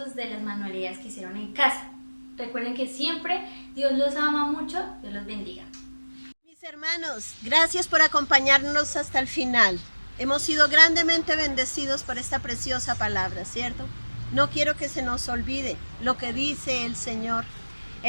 de las manualidades que hicieron en casa. Recuerden que siempre Dios los ama mucho. Dios los bendiga. Mis hermanos, gracias por acompañarnos hasta el final. hemos sido grandemente bendecidos por esta preciosa palabra, ¿cierto? No quiero que se nos olvide lo que dice el Señor.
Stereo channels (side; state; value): both; inverted; correlation -1.00